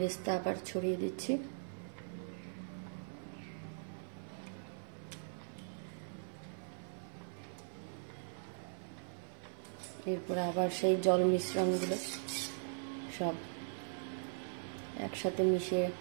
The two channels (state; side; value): silent; left; 51 dB below the other